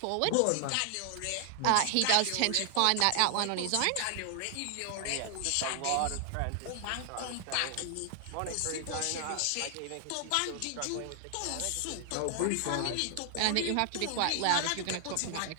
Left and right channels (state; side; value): different; both; correlation 0.00